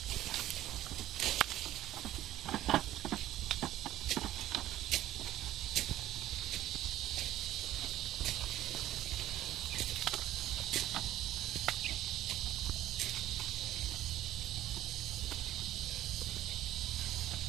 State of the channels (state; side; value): quieter; left; 13.6 dB